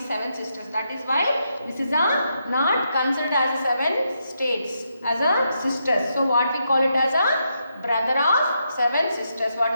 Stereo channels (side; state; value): both; inverted; correlation -0.81